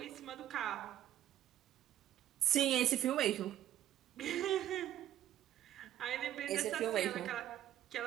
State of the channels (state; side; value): quieter; left; 12.0 dB